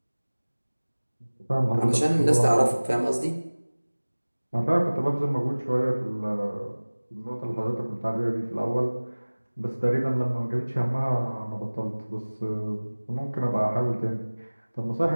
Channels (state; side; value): inverted; both; correlation -1.00